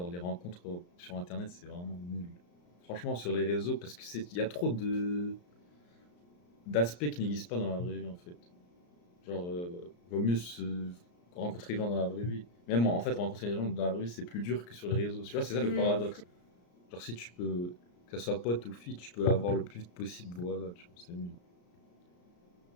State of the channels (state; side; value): late; right; 34 ms